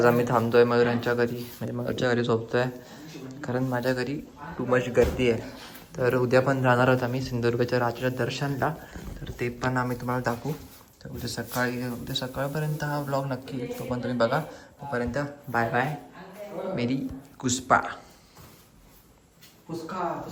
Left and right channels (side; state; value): both; identical; correlation 1.00